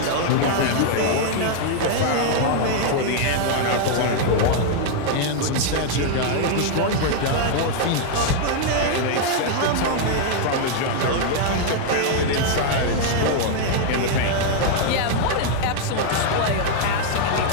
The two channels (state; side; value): different; both; correlation 0.00